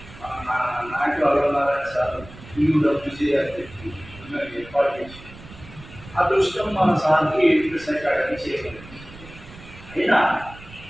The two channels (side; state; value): right; noise; rumble, 18 dB below the sound